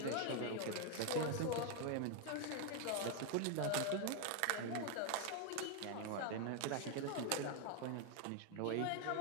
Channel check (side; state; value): both; different; correlation 0.01